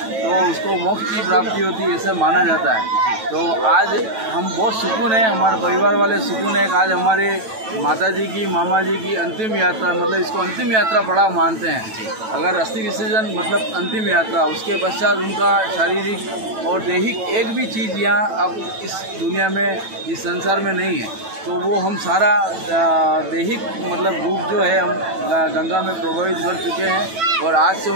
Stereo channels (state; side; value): late; left; 9.1 ms